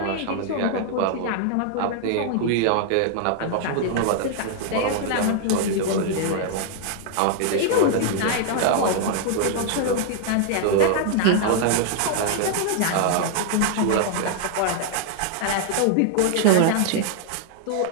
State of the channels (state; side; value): different; both; correlation 0.00